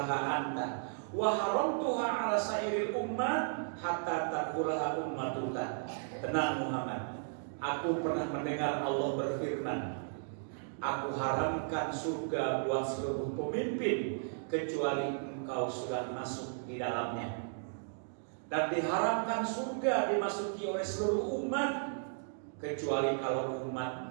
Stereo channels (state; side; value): silent; left; digital silence